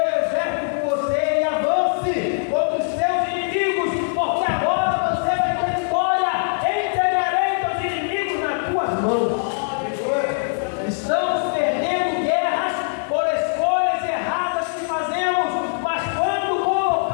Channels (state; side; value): silent; right; digital silence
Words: com você e avance contra os seus inimigos, porque agora você vai ter vitória. Entregarei teus inimigos nas tuas mãos. Estamos perdendo guerras por escolhas erradas que fazemos, mas quando